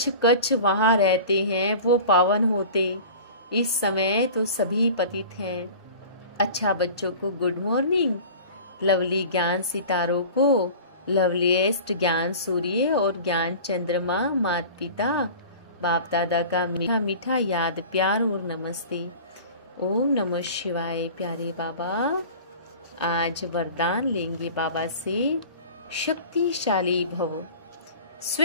कच्छ वहां रहते हैं वो पावन होते। इस समय तो सभी पतित हैं। अच्छा बच्चों को गुड मॉर्निंग। लवली ज्ञान सितारों को लवलीएस्ट ज्ञान सूर्य और ज्ञान चंद्रमा माता पिता बाप दादा का मीठा मीठा याद प्यार और नमस्ते। ओम नमः शिवाय। प्यारे बाबा, आज वरदान लेंगे बाबा से। शक्तिशाली भव।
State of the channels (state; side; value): inverted; both; correlation -0.39